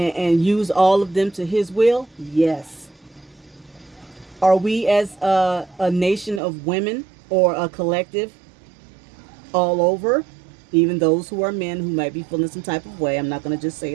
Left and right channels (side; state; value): left; drops out; at 6.4 s